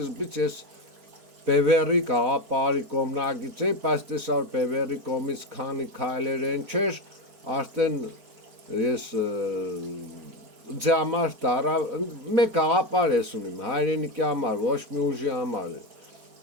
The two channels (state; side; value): late; left; 4.4 ms